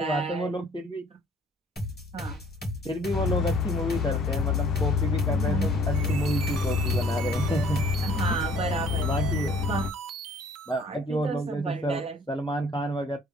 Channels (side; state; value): both; normal; correlation 0.56